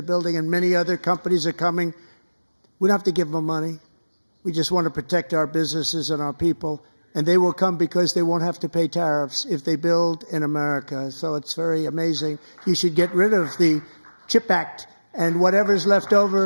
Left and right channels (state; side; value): inverted; both; correlation -1.00